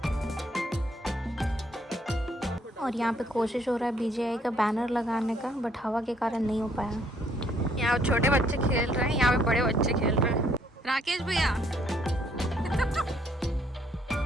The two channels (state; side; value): normal; both; correlation 0.67